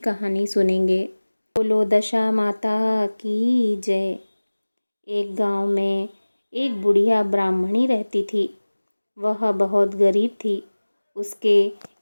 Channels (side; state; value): both; inverted; correlation -1.00